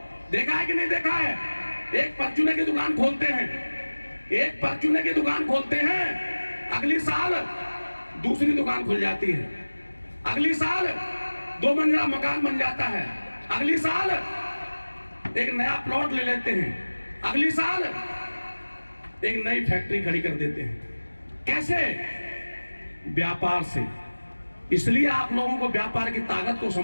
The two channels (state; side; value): inverted; both; correlation -1.00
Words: देखा है कि नहीं देखा है। एक परचूने की दुकान खोलते हैं, एक परचूने की दुकान खोलते हैं, अगली साल दूसरी दुकान खुल जाती है, अगली साल 2 मंजिला मकान बन जाता है, अगली साल एक नया प्लॉट ले लेते हैं, अगली साल एक नई फैक्ट्री खड़ी कर देते हैं। कैसे? व्यापार से। इसलिए आप लोगों को व्यापार की ताकत को